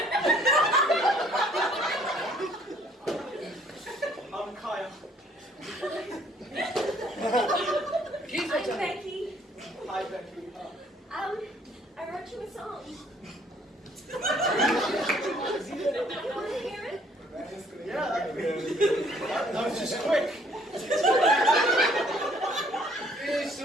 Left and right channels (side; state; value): both; normal; correlation 0.61